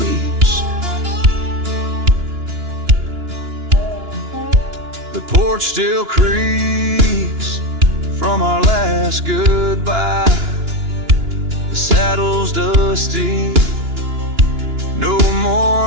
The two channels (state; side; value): late; left; 2.9 ms